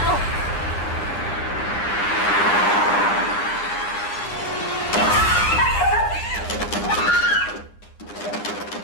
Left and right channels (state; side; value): late; right; 9.8 ms